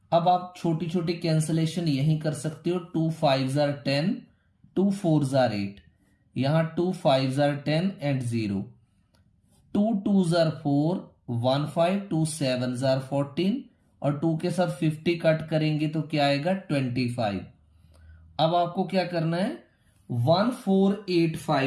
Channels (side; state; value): both; identical; correlation 1.00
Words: अब आप छोटी छोटी कैंसिलेशन यहीं कर सकते हो। 2 5s are 10, 2 4s are 8, यहां 2 5s are 10 and 0, 2 2s are 4, 1 5, 2 7s are 14 और 2 के साथ 50 कट करेंगे तो क्या आएगा 25। अब आपको क्या करना है,